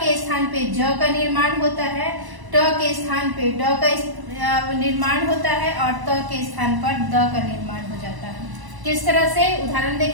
के स्थान पे ज का निर्माण होता है, ट के स्थान पे ड का निर्माण होता है और त के स्थान पर द का निर्माण हो जाता है। किस तरह से? उदाहरण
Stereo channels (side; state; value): left; late; 1.0 ms